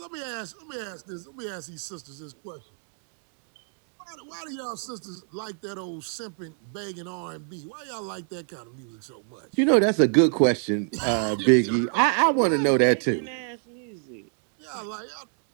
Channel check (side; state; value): left; silent; 57 dB below the other